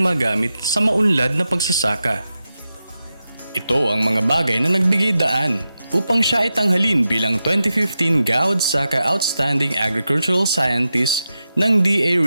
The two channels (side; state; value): both; inverted; correlation -0.90